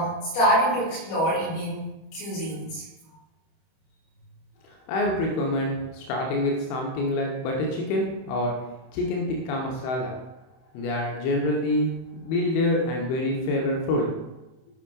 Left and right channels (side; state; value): right; late; 31 ms